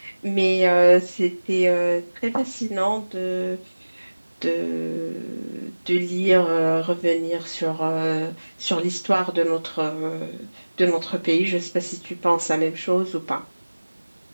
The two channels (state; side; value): inverted; both; correlation -1.00